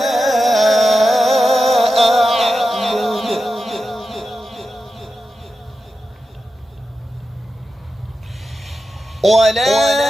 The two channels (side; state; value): both; normal; correlation 0.91